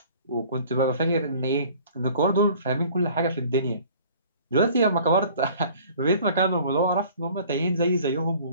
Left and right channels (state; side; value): inverted; both; correlation -0.50